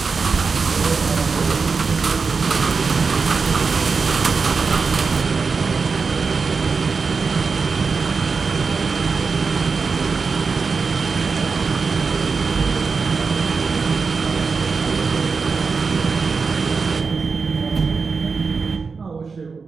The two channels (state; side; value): quieter; left; 4.9 dB